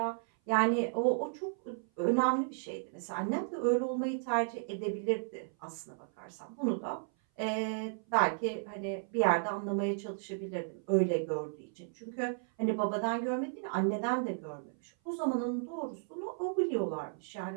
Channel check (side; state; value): left; silent; 55 dB below the other